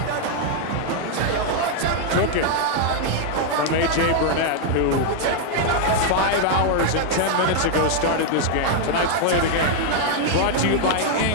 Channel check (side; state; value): both; different; correlation 0.00